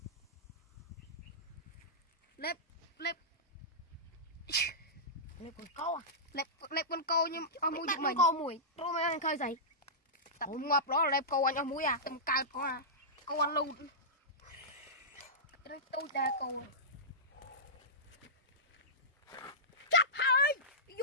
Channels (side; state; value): both; normal; correlation -0.16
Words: lép con câu à lép con câu nhưng ở mũi chúng mình câu mùi rồi mà anh khơi dậy tập ngọc đó là lép câu anh ở mũi à tầm cao có à câu ăn luôn tôi ta câu chắc hơi